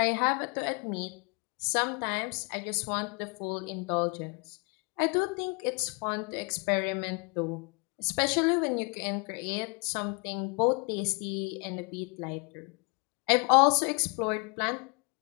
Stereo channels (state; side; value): quieter; right; 33.1 dB